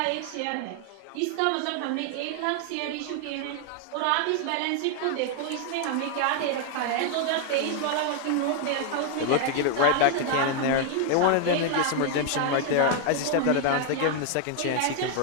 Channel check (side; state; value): both; different; correlation 0.00